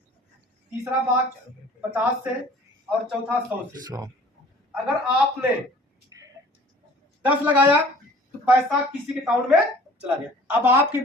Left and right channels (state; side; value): normal; both; correlation 0.49